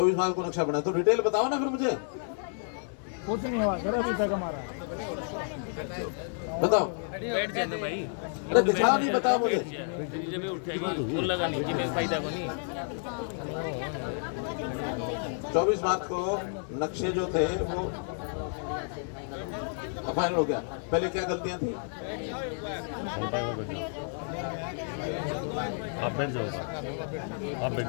मार्च को नक्शा बना, तो डिटेल बताओ ना फिर मुझे। कुछ नहीं हुआ सर अभी तक हमारा। बताओ, बैठ जाए ना भाई, अरे दिखा नहीं, बताओ मुझे। जब उठेगी वो लगा नहीं कि मैं फायदा को नहीं। 24 मार्च को नक्शे जो थे वो फाइनल हो गया। पहले क्या गलतियां थी? आप बैठ जाओ, आप बैठ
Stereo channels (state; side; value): silent; right; 56 dB below the other